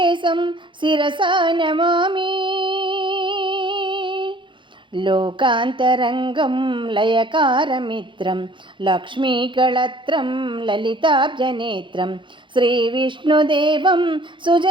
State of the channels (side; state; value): left; late; 0.23 ms